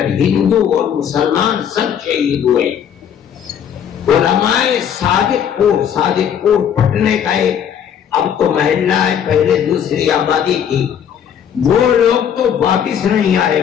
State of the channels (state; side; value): quieter; right; 8.7 dB